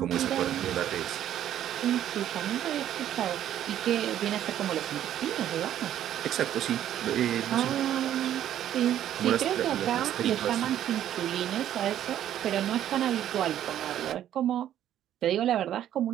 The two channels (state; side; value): quieter; left; 11.3 dB